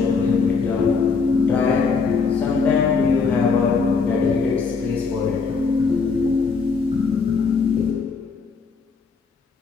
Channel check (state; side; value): quieter; right; 5.0 dB